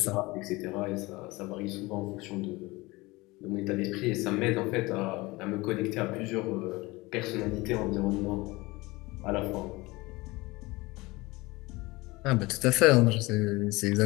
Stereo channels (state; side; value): quieter; right; 22.2 dB